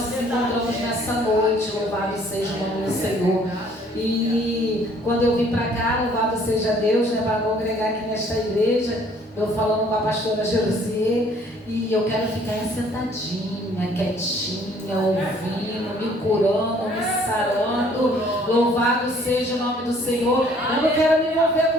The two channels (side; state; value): both; normal; correlation 0.59